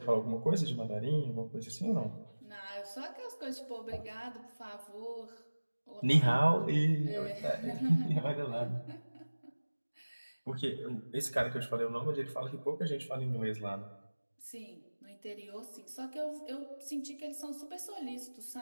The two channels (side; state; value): both; inverted; correlation -1.00